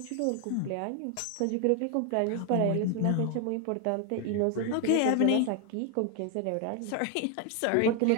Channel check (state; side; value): different; both; correlation 0.00